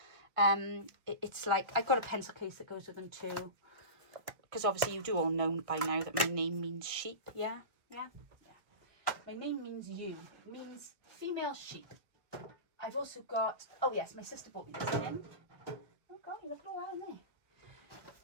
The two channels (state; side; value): late; left; 1.4 ms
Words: It's like, I've got a pencil case that goes with them too. Because obviously you do all know by now that my name means sheep. Yeah. My name means you. It means female sheep. I've also got, oh yes, my sister bought me this tin. Oh God, look at all that in there.